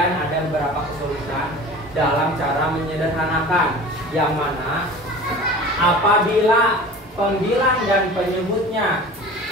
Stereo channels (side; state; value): both; normal; correlation 0.39